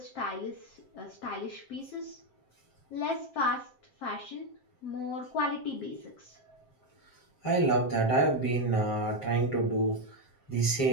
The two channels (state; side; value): late; right; 7.6 ms